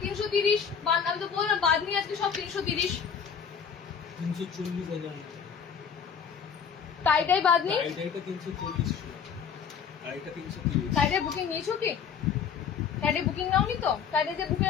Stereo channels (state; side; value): quieter; right; 7.0 dB